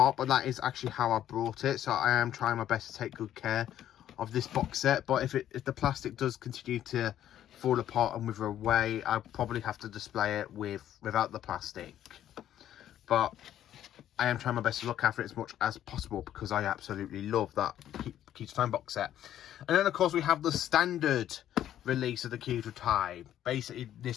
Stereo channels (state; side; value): quieter; right; 11.4 dB